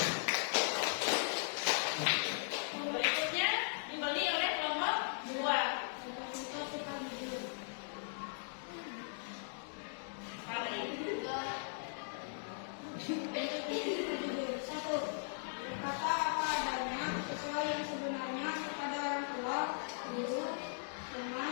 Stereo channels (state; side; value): silent; right; digital silence